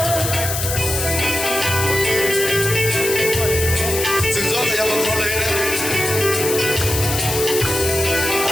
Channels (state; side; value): noise; left; hiss, 3 dB below the sound